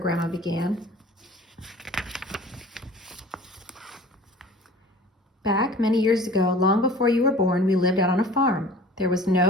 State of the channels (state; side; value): normal; both; correlation 0.44